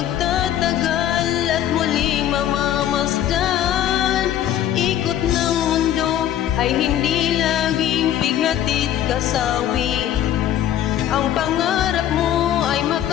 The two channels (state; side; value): quieter; right; 11.3 dB